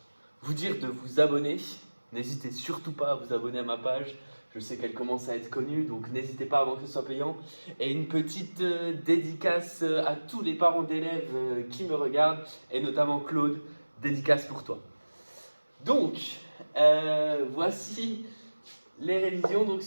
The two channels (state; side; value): inverted; both; correlation -1.00